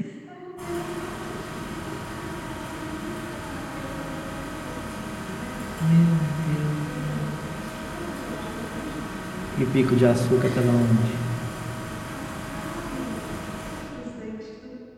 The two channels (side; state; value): both; identical; correlation 1.00